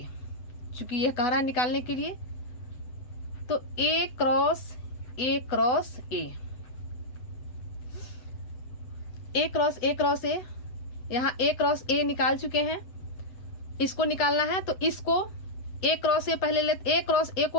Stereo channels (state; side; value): late; right; 8.1 ms